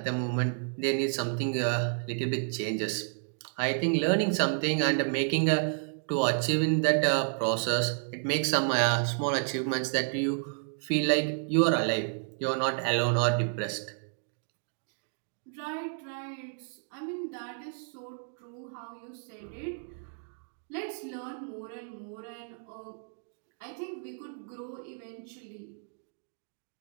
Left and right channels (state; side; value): silent; left; 56 dB below the other